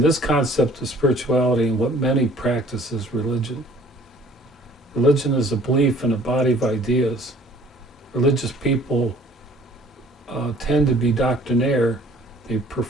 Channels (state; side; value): normal; both; correlation 0.54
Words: concept of spirituality and what many practice as religion. Religion is a belief in a body of ideas. Religious people tend to be doctrinaire. They